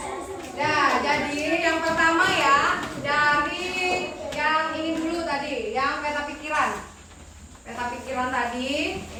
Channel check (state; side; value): identical; both; correlation 1.00